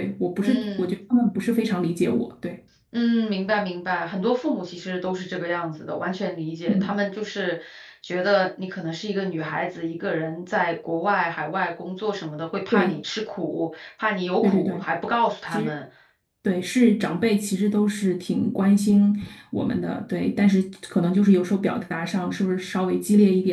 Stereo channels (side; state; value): both; identical; correlation 1.00